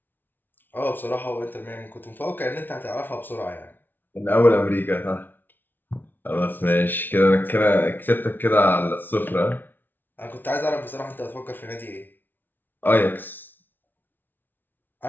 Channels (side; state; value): right; late; 0.092 ms